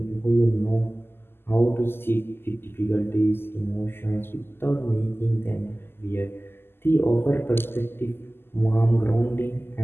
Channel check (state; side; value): late; right; 0.11 ms